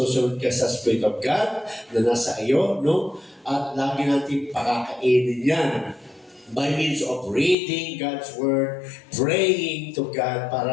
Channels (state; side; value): drops out; right; at 7.6 s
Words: ka sa Spirit of God na nasa iyo, no? At lagi natin pakakainin yan by means of reading God's Word, praying to God